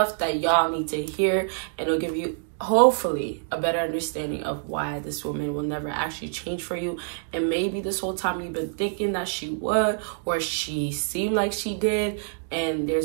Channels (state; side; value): silent; left; digital silence